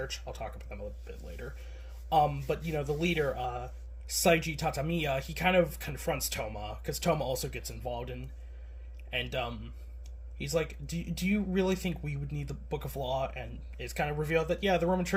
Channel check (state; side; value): identical; both; correlation 1.00